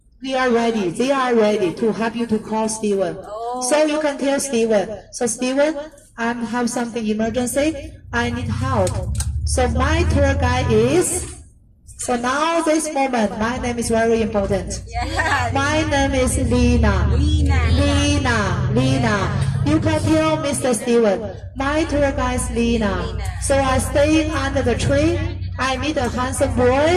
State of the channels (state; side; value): identical; both; correlation 1.00